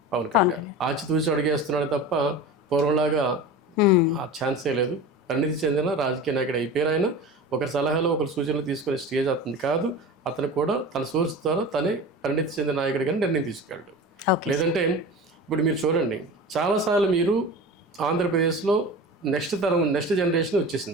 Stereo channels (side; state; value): both; normal; correlation 0.32